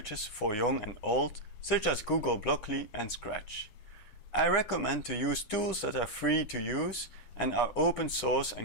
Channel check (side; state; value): right; late; 9.7 ms